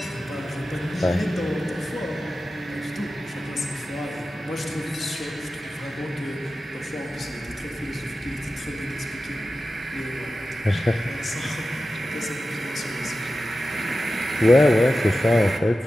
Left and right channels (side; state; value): both; normal; correlation 0.93